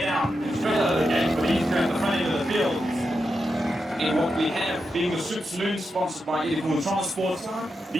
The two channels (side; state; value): both; normal; correlation 0.87